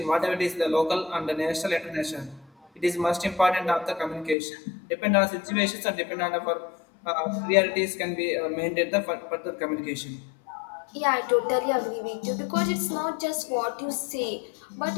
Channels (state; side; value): drops out; right; at 4.4 s